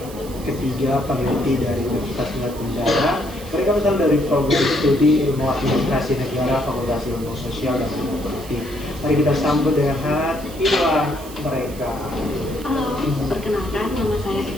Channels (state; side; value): noise; right; hiss, 17 dB below the sound